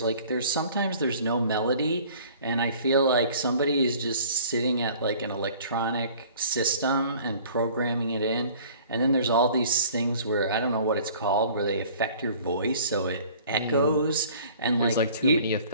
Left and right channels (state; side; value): inverted; both; correlation -0.50